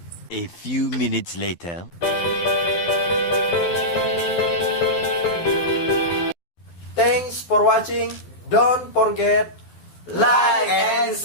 A few minutes later. Thanks for watching. Don't forget like and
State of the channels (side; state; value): right; late; 12 ms